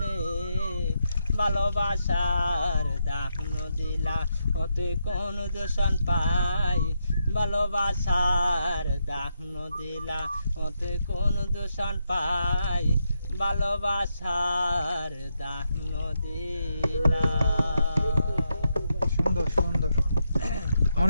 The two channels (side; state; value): both; inverted; correlation -0.82